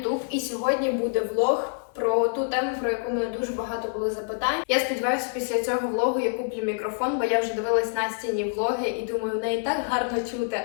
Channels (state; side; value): silent; right; 60 dB below the other